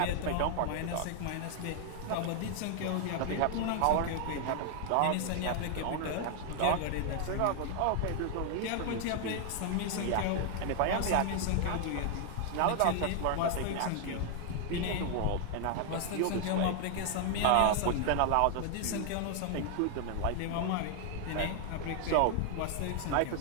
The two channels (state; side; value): different; both; correlation 0.00